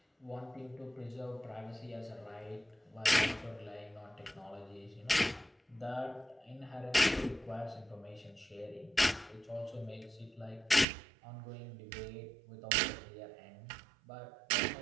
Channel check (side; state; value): left; drops out; at 10.9 s